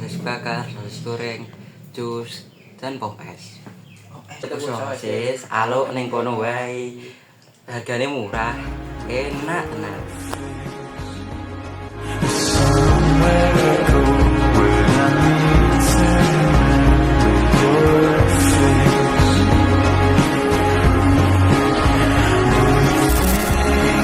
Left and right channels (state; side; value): identical; both; correlation 1.00